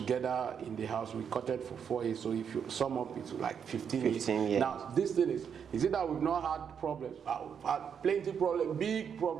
in the house, we courted for 4 years. So if you sum up, it's like 15 years. Now, this thing is it that we've not had problems? We've had plenty of problems, big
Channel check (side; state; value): left; quieter; 7.4 dB